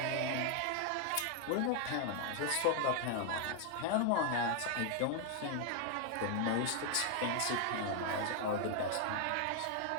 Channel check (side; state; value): both; different; correlation 0.00